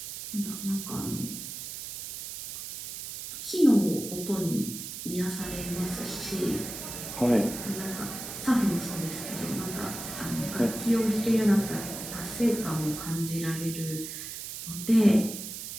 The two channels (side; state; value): right; noise; hiss, 8 dB below the sound